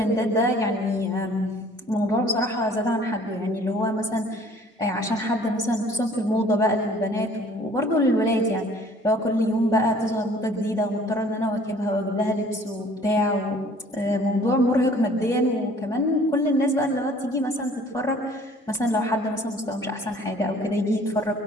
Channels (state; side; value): normal; both; correlation 0.53